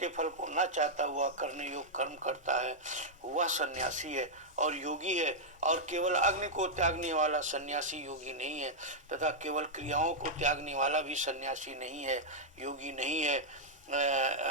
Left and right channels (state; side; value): normal; both; correlation -0.05